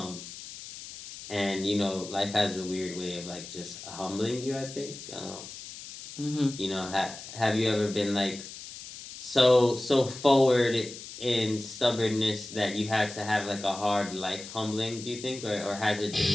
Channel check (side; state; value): left; noise; hiss, 13 dB below the sound